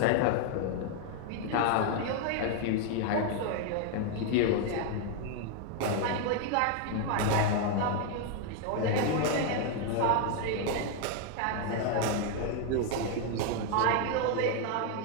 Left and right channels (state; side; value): different; both; correlation 0.00